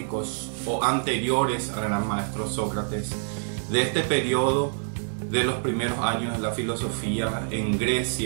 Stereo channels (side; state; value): left; silent; digital silence